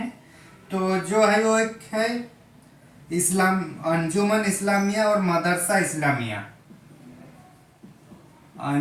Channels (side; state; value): both; identical; correlation 1.00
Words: तो जो है वो एक है अंजुमन इस्लामिया और मदरसा इस्लामिया।